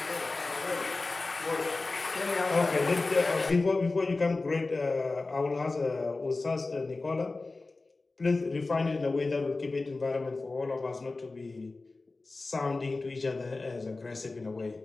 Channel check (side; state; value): right; quieter; 3.5 dB